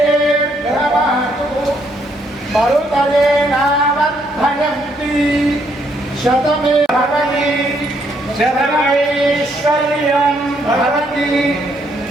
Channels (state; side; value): normal; both; correlation 0.71